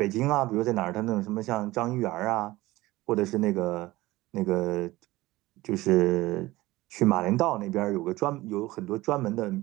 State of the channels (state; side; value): quieter; left; 18.6 dB